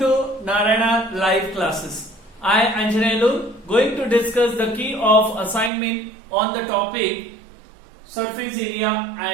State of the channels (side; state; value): left; drops out; at 5.7 s